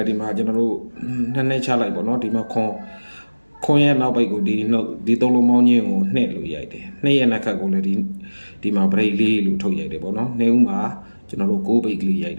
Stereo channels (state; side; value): inverted; both; correlation -1.00